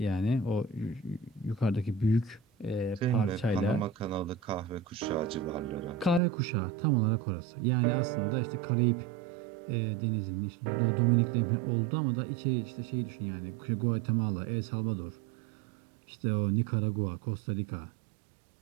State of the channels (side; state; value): left; drops out; at 6.2 s